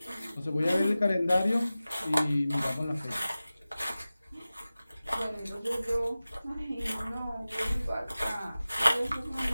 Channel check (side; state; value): both; inverted; correlation -0.96